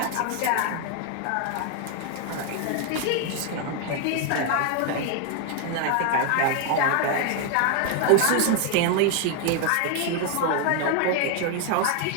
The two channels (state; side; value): different; both; correlation 0.00